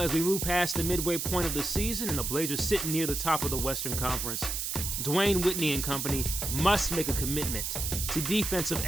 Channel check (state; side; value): noise; right; hiss, 2 dB below the sound